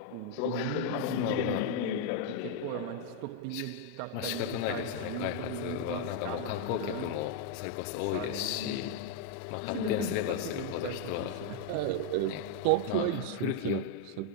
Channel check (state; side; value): different; both; correlation 0.00